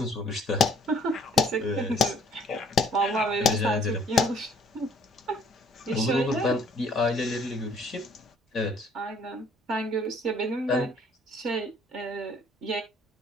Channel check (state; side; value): normal; both; correlation 0.59